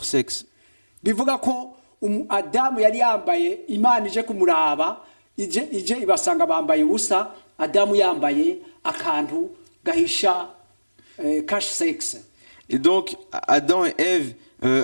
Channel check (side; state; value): both; inverted; correlation -1.00